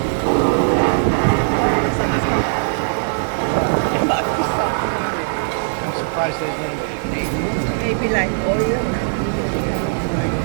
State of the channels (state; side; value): silent; left; 57 dB below the other